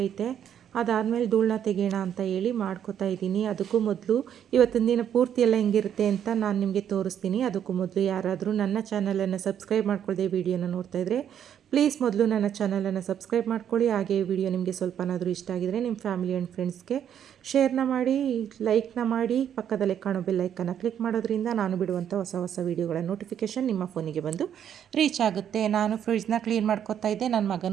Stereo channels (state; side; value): quieter; left; 9.3 dB